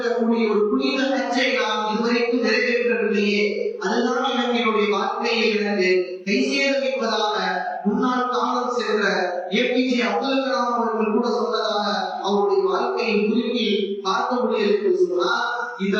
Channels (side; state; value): both; identical; correlation 1.00